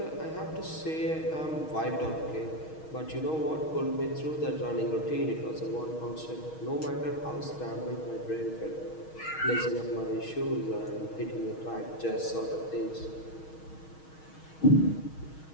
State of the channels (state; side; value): late; right; 6.4 ms